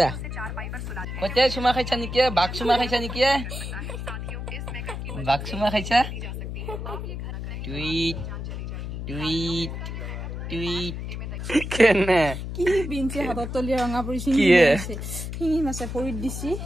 কতে চুমা খাইছা নেকি বাঘ চুমা খাইছা নেকি বাঘ চুমা খাইছা টুইট টুইট টুইট কেনে কি বিনছে হাতত তলি ৰঙা পৰিছে শিঙি মাছে ভৰিত দিছি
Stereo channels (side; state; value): left; noise; hum, 6 dB below the sound